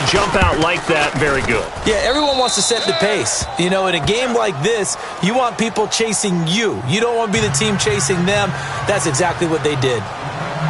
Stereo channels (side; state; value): both; identical; correlation 1.00